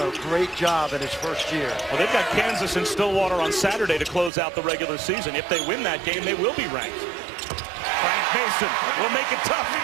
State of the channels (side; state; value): left; drops out; at 4.3 s